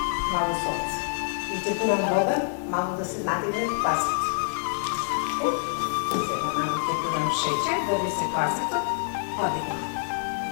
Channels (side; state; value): right; silent; digital silence